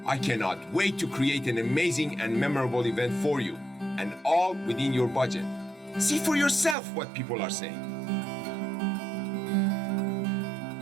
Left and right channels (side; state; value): left; drops out; at 6.8 s